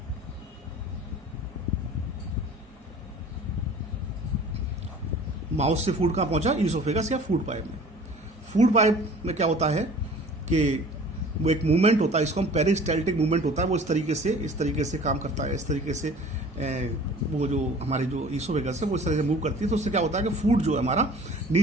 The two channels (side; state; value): both; normal; correlation 0.46